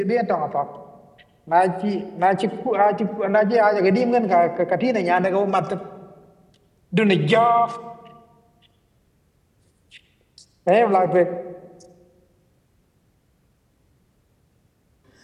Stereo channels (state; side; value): identical; both; correlation 1.00